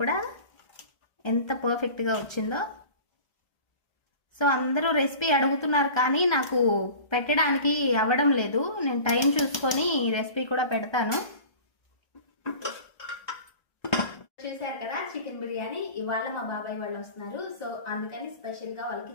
కూడా ఎంత పర్ఫెక్ట్గా వచ్చిందో. సో అందరూ రెసిపీ అడుగుతున్నారు కానీ నాకు పెట్టడానికి అవ్వడం లేదు. నేను టైం చూసుకొని రెసిపీ కూడా పెడతాను. చూసారు కదా చికెన్ బిర్యానీ. ఇవాళ మా బాబాయ్ వాళ్ళు వస్తున్నారు, సో అందుకని స్పెషల్ గా వాళ్ళకి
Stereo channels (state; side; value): late; right; 1.3 ms